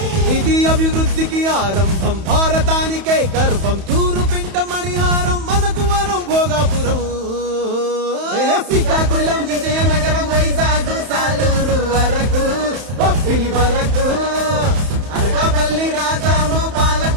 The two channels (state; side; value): late; left; 31 ms